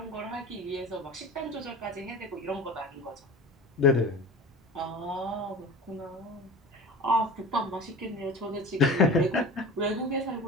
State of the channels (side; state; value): both; normal; correlation 0.35